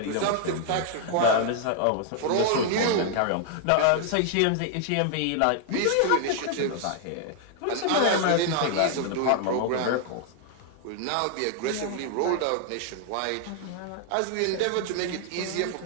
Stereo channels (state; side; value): different; both; correlation 0.00